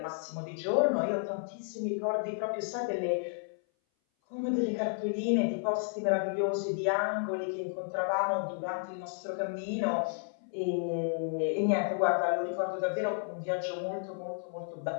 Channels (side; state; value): right; silent; 56 dB below the other